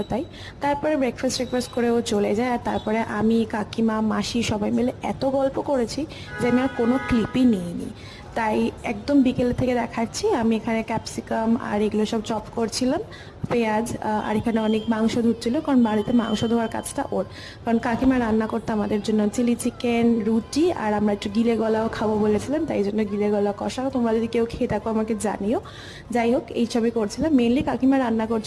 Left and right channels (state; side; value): identical; both; correlation 1.00